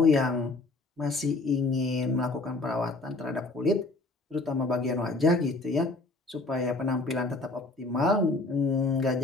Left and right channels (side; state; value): right; quieter; 3.1 dB